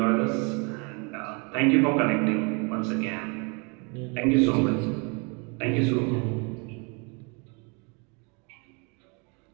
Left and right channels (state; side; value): quieter; left; 32.7 dB